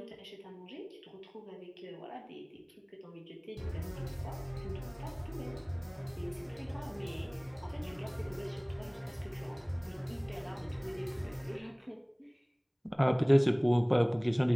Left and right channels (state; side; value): identical; both; correlation 1.00